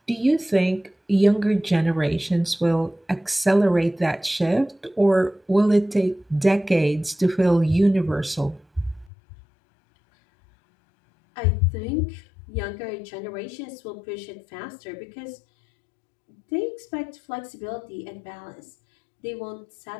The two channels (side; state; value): right; drops out; at 9.1 s